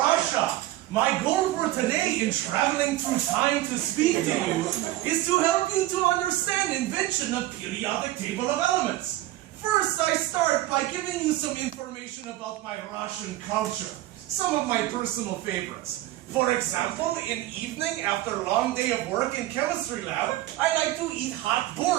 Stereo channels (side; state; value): left; quieter; 15.7 dB